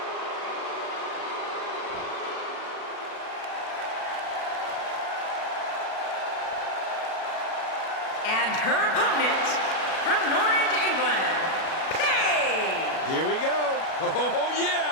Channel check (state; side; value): late; right; 37 ms